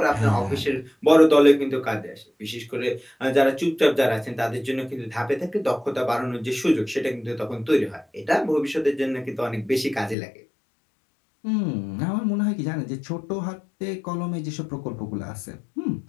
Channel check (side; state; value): right; drops out; at 10.2 s